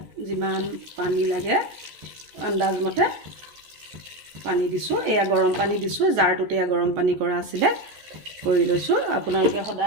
যিমান পানী লাগে আন্দাজমতে পানী দিছোঁ, এয়া গৰম পানী দিছোঁ, জাৰটোতে এয়া গৰম পানী কৰা আছিলে কৰি লৈছোঁ। আপোনালোকে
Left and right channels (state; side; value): late; left; 14 ms